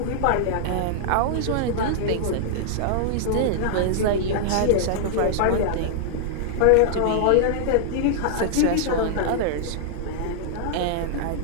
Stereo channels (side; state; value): both; different; correlation -0.01